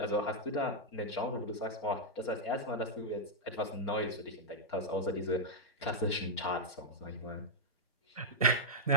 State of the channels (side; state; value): both; normal; correlation -0.02